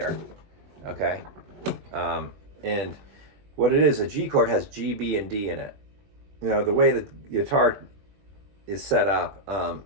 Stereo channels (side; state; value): left; late; 21 ms